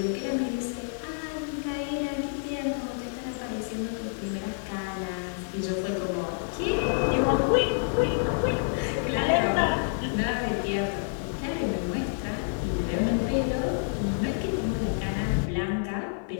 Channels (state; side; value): silent; right; 59 dB below the other